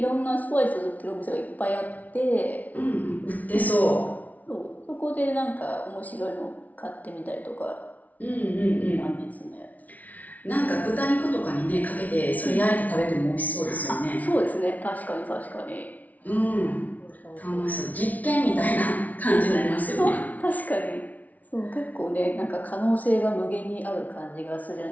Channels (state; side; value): late; right; 0.073 ms